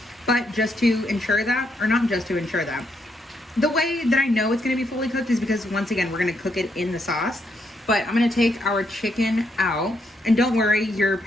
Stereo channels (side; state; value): both; normal; correlation 0.77